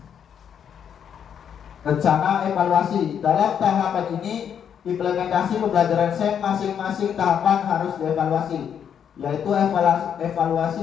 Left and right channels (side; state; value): right; quieter; 8.3 dB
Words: Rencana evaluasi. Dalam tahapan ini, implementasi pembelajaran SEM masing-masing tahapan harus dievaluasi, yaitu